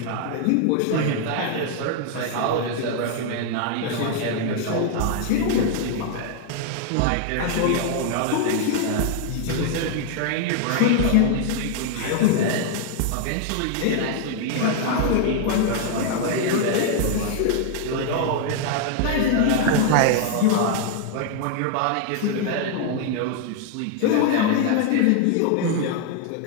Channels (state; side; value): different; both; correlation 0.00